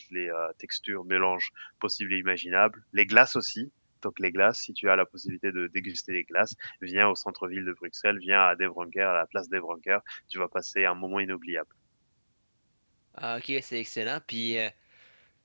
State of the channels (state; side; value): inverted; both; correlation -1.00